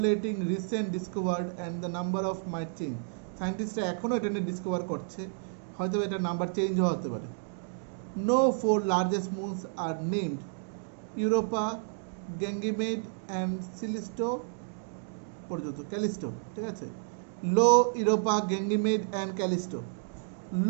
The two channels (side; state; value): left; silent; digital silence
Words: recent discovered and the number of might change. Scientists এখনো এটা নিয়ে ডিসকভার করছে, হয়তো এটা নাম্বার চেঞ্জও হতে পারে। No four largest moons are named Europa, Ganymede and Callisto. পর্যন্ত ক্যালিস্টো, ঠিক আছে। Io, Europa, Ganymede and Callisto.